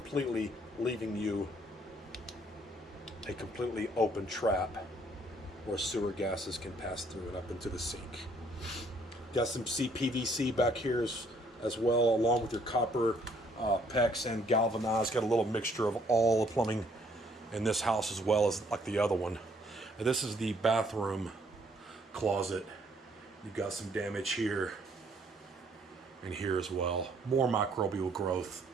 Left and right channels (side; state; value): both; normal; correlation 0.65